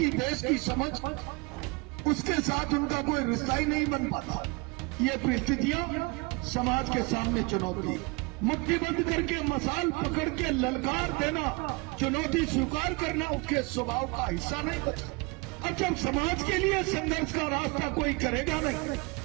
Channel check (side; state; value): left; quieter; 27.8 dB